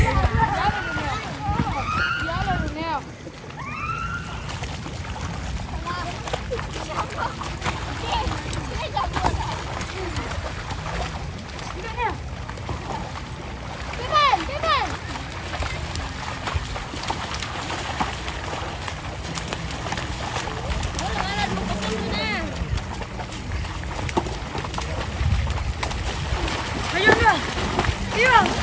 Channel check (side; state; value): both; identical; correlation 1.00